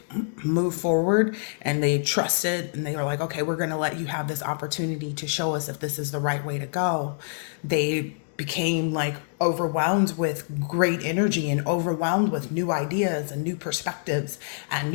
move forward and they trusted and they were like, okay, we're going to let you have this opportunity to show us if this is the right way to go. They became like overwhelmed with great energy and overwhelmed with new ideas and new perspectives and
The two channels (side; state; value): right; silent; digital silence